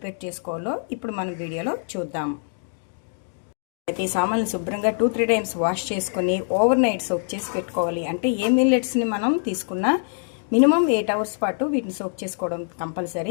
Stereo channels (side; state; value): right; silent; 62 dB below the other